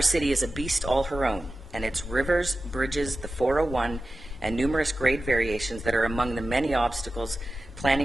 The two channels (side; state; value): both; normal; correlation 0.94